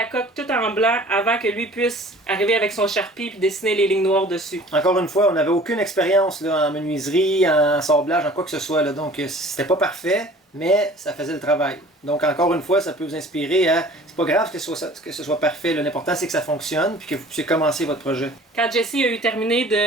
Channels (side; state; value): both; normal; correlation 0.48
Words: coque tout en blanc avant que lui puisse arriver avec son Sharpie et dessiner les lignes noires dessus. Encore une fois, on n'avait aucune expérience là, en menuiserie, en sablage, en quoi que ce soit. Là, donc, c'était pas parfait, mais ça faisait le travail. Donc, encore une fois, ça peut vous inspirer à... C'est pas grave que ce soit parfait. L'important, c'est que ça fonctionne puis que vous puissiez commencer votre projet. Quand Jesse a eu terminé